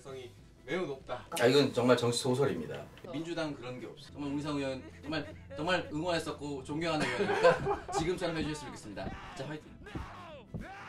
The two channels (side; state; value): both; identical; correlation 1.00